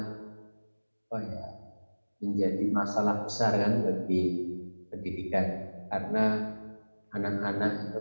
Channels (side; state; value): both; inverted; correlation -1.00